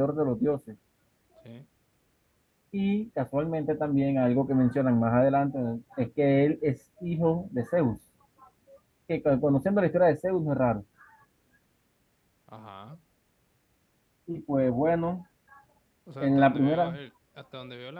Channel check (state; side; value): identical; both; correlation 1.00